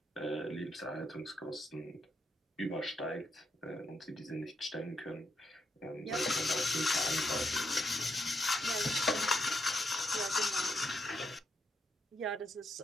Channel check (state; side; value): normal; both; correlation 0.80